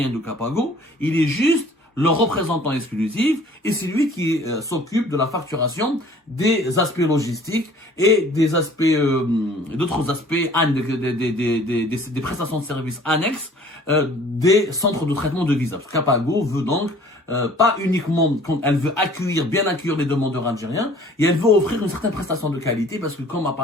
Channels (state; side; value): normal; both; correlation 0.52